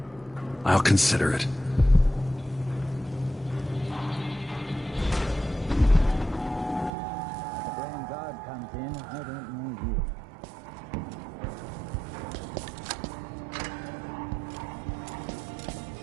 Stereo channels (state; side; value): drops out; left; at 6.9 s